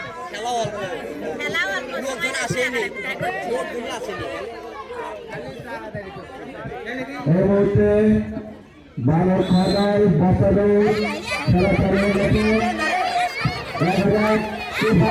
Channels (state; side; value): identical; both; correlation 1.00